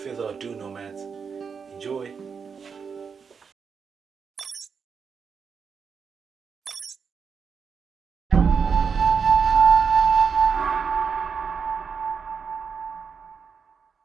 ado nomads, enjoy!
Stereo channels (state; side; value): quieter; left; 6.1 dB